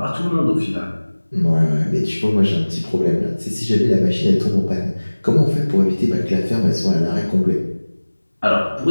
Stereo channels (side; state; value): both; inverted; correlation -1.00